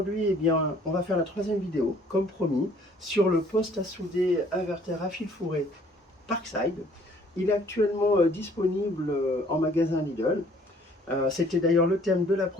on va faire la troisième vidéo, comme promis, sur le poste à souder inverter à fil fourré Parkside. Il est actuellement disponible en magasin Lidl. C'était d'ailleurs le thème de la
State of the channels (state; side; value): normal; both; correlation 0.58